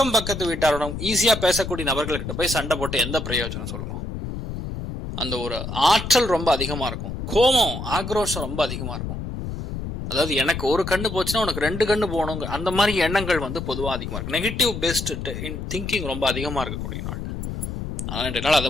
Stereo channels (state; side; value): noise; left; rumble, 6 dB below the sound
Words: பக்கத்து வீட்டாரோட ஈஸியா பேசக்கூடிய நபர்கள்கிட்ட போய் சண்டை போட்டு எந்த பிரயோஜனம் சொல்லுங்க? அந்த ஒரு ஆற்றல் ரொம்ப அதிகமா இருக்கும். கோபம், ஆக்ரோஷம் ரொம்ப அதிகமா இருக்கும். அதாவது எனக்கு ஒரு கண்ணு போச்சுன்னா உனக்கு 2 கண்ணு போகணும், அந்த மாதிரி எண்ணங்கள் பொதுவாக அதிகமா இருக்கு. நெகட்டிவ் பேஸ்ட் திங்கிங் ரொம்ப அதிகமா இருக்கக்கூடிய நாள். ஆனால் இன்றைய நாள் அதை